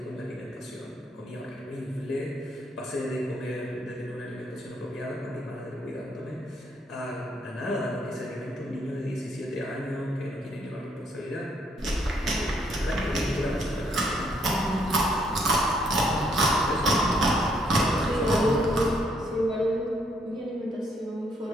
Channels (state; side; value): normal; both; correlation 0.71